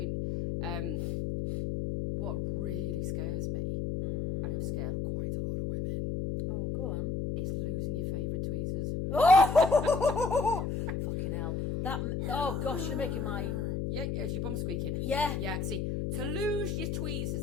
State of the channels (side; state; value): left; noise; hum, 1 dB below the sound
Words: what really scares me, and it'll scare quite a lot of women, Oh, go on. is losing your favourite tweezers. Oh! Fucking hell. Oh, gosh, you're making my... Yeah, is your bum squeaking? Yeah. Yeah, see, to lose your tweezers